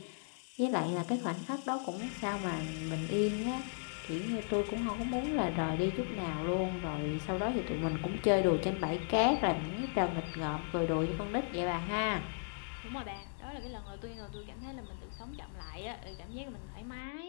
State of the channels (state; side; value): silent; right; digital silence